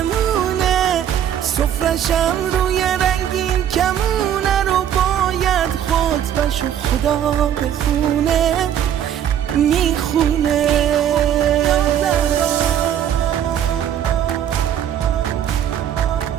سفرشم روی رنگین کمونه رو باید خطبش و خدا بخونه میخونه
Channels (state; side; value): quieter; left; 10.0 dB